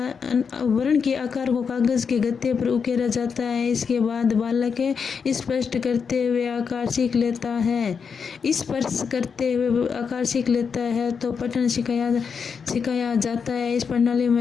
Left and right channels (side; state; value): right; quieter; 6.1 dB